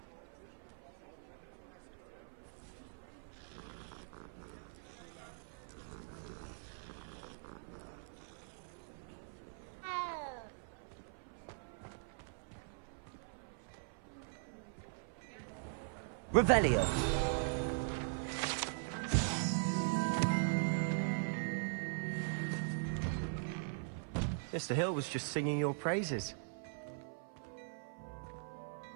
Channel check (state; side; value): silent; left; 50 dB below the other